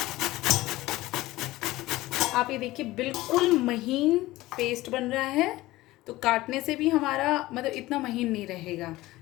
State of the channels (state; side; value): quieter; right; 18.0 dB